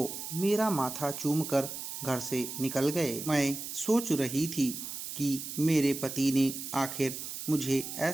मेरा माथा चूमकर घर से निकल गए। मैं सोच रही थी कि मेरे पति ने आखिर मुझे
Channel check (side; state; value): right; noise; hiss, 7 dB below the sound